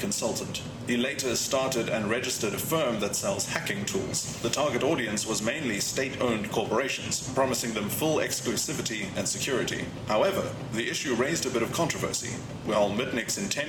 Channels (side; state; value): both; identical; correlation 1.00